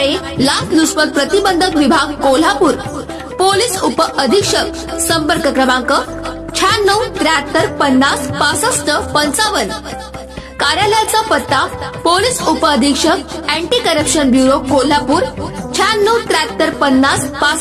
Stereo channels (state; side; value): identical; both; correlation 1.00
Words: लाचलुचपत प्रतिबंधक विभाग कोल्हापूर, पोलीस उप अधीक्षक, संपर्क क्रमांक 96 73 50 65 55। कार्यालयाचा पत्ता पोलीस उप अधीक्षक अँटी करप्शन ब्युरो कोल्हापूर 96 73 50